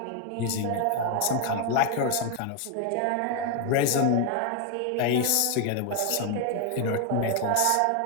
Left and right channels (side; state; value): both; different; correlation 0.01